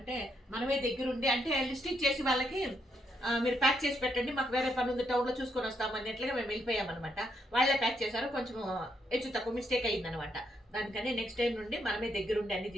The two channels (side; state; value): both; normal; correlation 0.77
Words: మనమే దగ్గరుండి అంటే లిస్ట్ ఇచ్చేసి వాళ్ళకి మీరు ప్యాక్ చేసి పెట్టండి, మాకు వేరే పని ఉంది టౌన్లో చూసుకొని వస్తాము అన్నట్లుగా మేము వెళ్ళిపోయామన్నమాట. వాళ్ళే ప్యాక్ చేశారు, కొంచెం హెచ్చు తక్కువ మిస్టేక్ అయిందనమాట. దానికని నెక్స్ట్ టైం నుండి మనమే దగ్గరుండి అన్ని